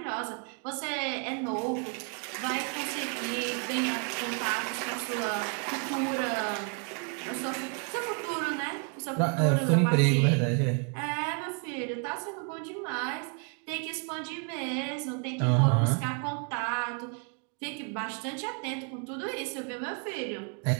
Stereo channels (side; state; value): left; quieter; 38.8 dB